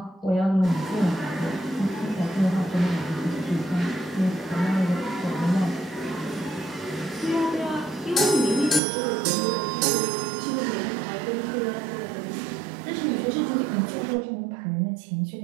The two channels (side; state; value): left; drops out; at 8.8 s